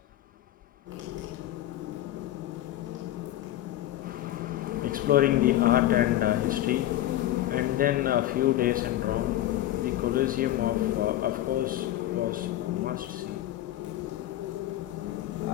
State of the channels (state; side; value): quieter; right; 14.1 dB